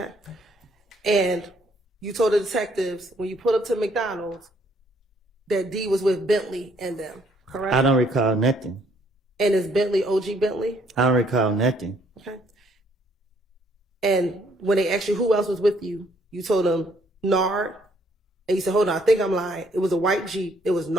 And you told the detectives when you pulled up to McDonald's that D was with Bentley and them, correct? I don't recall nothing. And is Bentley OG Bentley? I don't recall nothing. Okay. And when they asked you who else was with you, you told them Nard. And you said, hold on, I think I'm lying. It was a white Jeep. It was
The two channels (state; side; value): normal; both; correlation 0.66